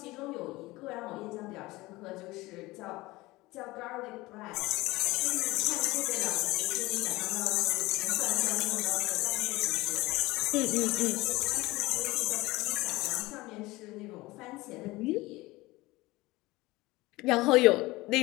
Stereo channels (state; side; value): quieter; right; 20.3 dB